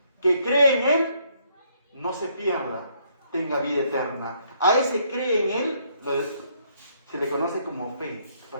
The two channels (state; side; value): inverted; both; correlation -0.69